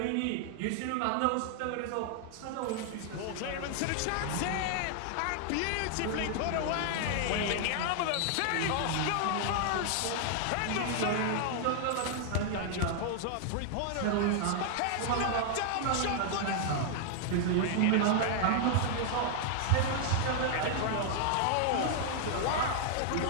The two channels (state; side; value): different; both; correlation 0.00